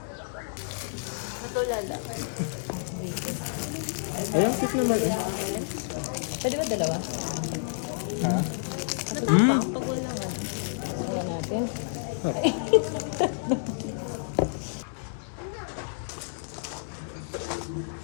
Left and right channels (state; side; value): silent; right; digital silence